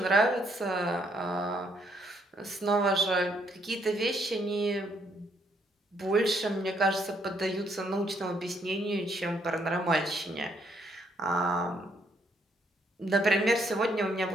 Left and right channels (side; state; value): both; normal; correlation 0.71